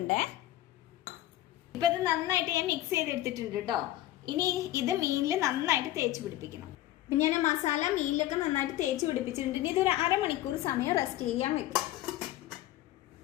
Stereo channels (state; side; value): quieter; right; 14.7 dB